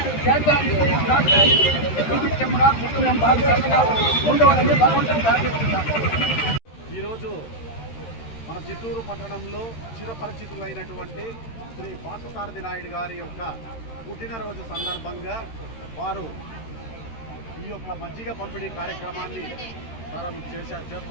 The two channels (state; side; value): late; right; 13 ms